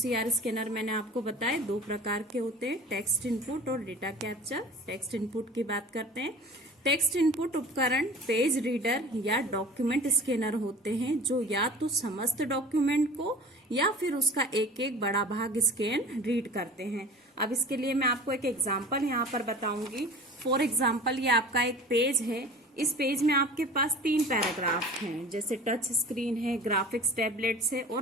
स्कैनर मैंने आपको बताए 2 प्रकार के होते हैं, टेक्स्ट इनपुट और डेटा कैप्चर। टेक्स्ट इनपुट की बात करते हैं। टेक्स्ट इनपुट उपकरण पेज रीडर या डॉक्यूमेंट स्कैनर होते हैं जो या तो समस्त डॉक्यूमेंट को या फिर उसका एक एक बड़ा भाग स्कैन रीड करते हैं। अब इसके लिए मैं आपको एक एग्जांपल यहाँ पर बताऊंगी। फॉर एग्जांपल ये आपका एक पेज है। इस पेज में आपके पास 3 पैराग्राफ हैं, जैसे टच स्क्रीन है, ग्राफिक्स टैबलेट्स है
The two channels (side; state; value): both; normal; correlation 0.41